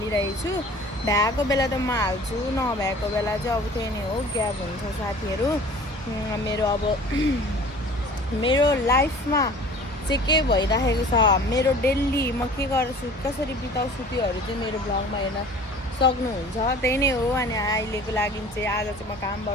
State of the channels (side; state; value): both; normal; correlation 0.45